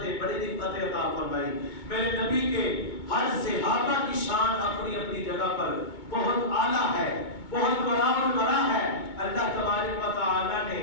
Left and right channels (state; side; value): late; right; 2.2 ms